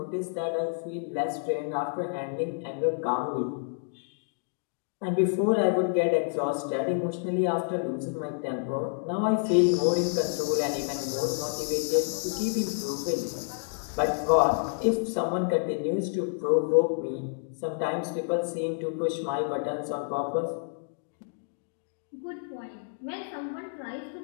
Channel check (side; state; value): right; silent; digital silence